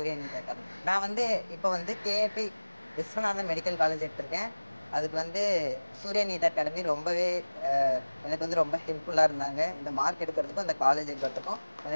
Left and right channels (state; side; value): inverted; both; correlation -1.00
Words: NEET Academy. நான் வந்து இப்போ வந்து கேஏபி விஸ்வநாதன் மெடிக்கல் காலேஜ் எடுத்திருக்கேன். அதுக்கு வந்து சூர்யா நீட் அகாடமி ரொம்பவே எனக்கு வந்து ரொம்ப ஹெல்ப்ஃபுல்லாக இருந்தாங்க. இந்த மார்க் எடுக்கிறதுக்கும் அந்த காலேஜ் எடுக்கிறதுக்கும்